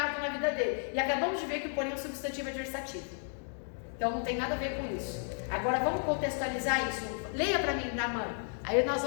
na vida dele. E acabamos de ver que o porém é um substantivo adversativo. Então não tem nada a ver com isso. Agora vamos contextualizar isso. Leia para mim, Naamã. Aí nós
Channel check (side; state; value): right; silent; 56 dB below the other